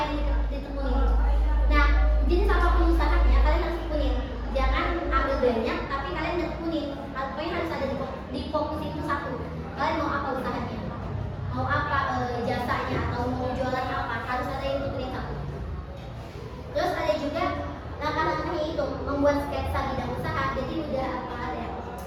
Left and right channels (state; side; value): identical; both; correlation 1.00